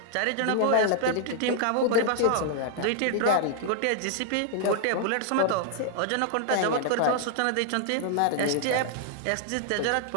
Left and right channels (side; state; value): both; different; correlation 0.00